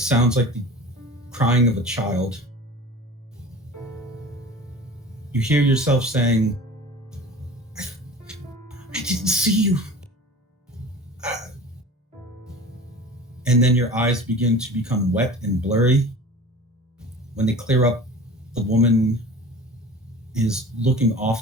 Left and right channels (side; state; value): both; normal; correlation 0.40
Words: like the crying of a child. You hear yourself saying, I didn't see you. And then your eyes begin to become wet and blurry. When they clear up, the woman is looking